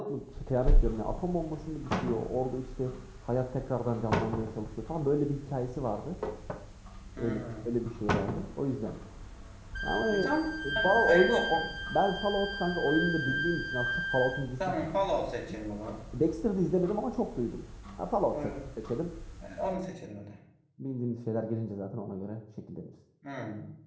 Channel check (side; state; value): both; identical; correlation 1.00